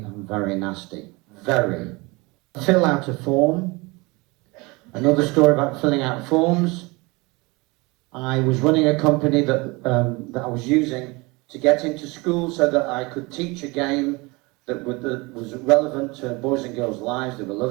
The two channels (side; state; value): left; quieter; 25.3 dB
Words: very nasty. Very. Fill out a form. Another story about filling out forms. I was running a company that I was using to get into school so that I could teach a game that was relevant to boys and girls' lives. They were